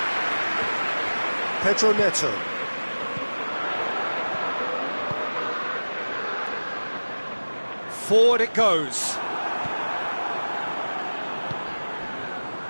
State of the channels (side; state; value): both; inverted; correlation -1.00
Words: Pedro Neto. Forward it goes.